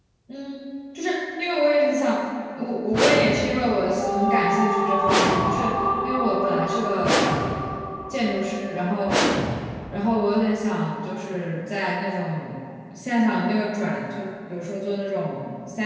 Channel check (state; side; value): identical; both; correlation 1.00